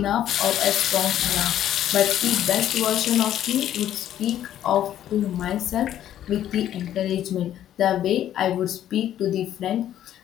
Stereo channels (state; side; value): quieter; right; 11.5 dB